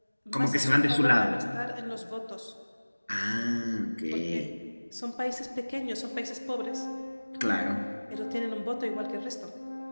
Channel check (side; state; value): both; inverted; correlation -1.00